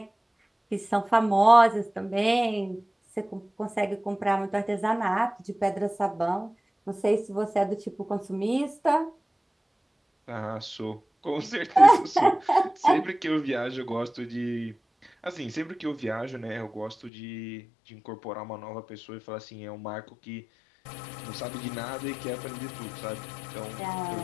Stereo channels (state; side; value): drops out; right; at 17.1 s